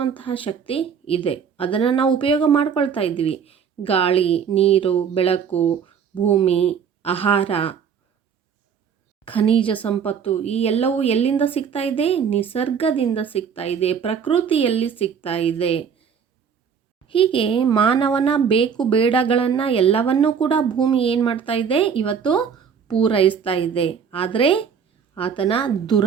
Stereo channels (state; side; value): quieter; left; 7.1 dB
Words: ಶಕ್ತಿ ಇದೆ. ಅದನ್ನು ನಾವು ಉಪಯೋಗ ಮಾಡ್ಕೊಳ್ತಾ ಇದ್ವಿ. ಗಾಳಿ, ನೀರು, ಬೆಳಕು, ಭೂಮಿ, ಆಹಾರ, ಖನಿಜ ಸಂಪತ್ತು ಈ ಎಲ್ಲವೂ ಎಲ್ಲಿಂದ ಸಿಗ್ತಾ ಇದೆ? ನಿಸರ್ಗದಿಂದ ಸಿಗ್ತಾ ಇದೆ, ಪ್ರಕೃತಿಯಲ್ಲಿ ಸಿಗ್ತಾ ಇದೆ. ಹೀಗೆ ಮಾನವನ ಬೇಕು ಬೇಡಗಳನ್ನು ಎಲ್ಲವನ್ನೂ ಕೂಡ ಭೂಮಿ ಏನು ಮಾಡ್ತಾ ಇದೆ? ಇವತ್ತು ಪೂರೈಸ್ತಾ ಇದೆ. ಆದರೆ ಆತನ